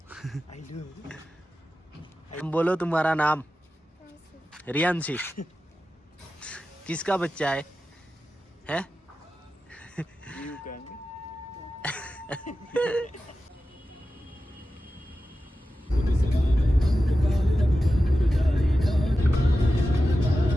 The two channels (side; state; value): both; normal; correlation 0.93